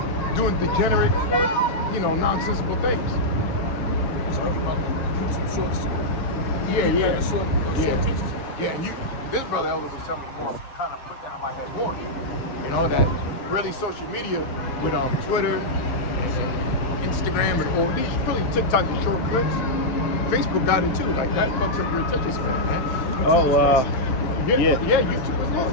doing degenerate, you know, nonsensical things. Shorts. Yeah. Short teachers. Yeah, and this brother Elder was telling me more, kind of put that in my head more. You know, that really social media with Twitter and Instagram and all these, really TikTok and short clips. Facebook got it too. Like that fucks up your attention span, man. Oh, yeah. YouTube as well.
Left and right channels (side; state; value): right; late; 7.4 ms